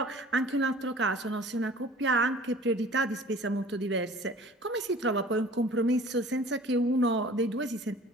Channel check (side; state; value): both; normal; correlation 0.46